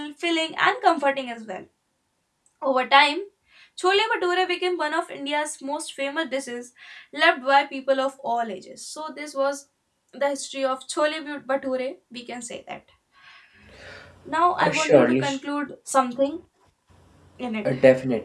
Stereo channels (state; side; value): identical; both; correlation 1.00